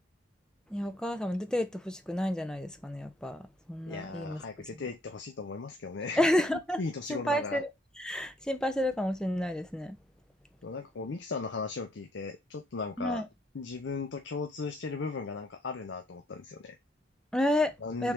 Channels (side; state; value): both; normal; correlation 0.70